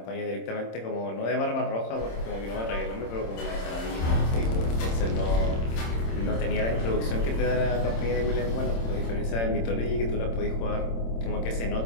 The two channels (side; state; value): right; late; 26 ms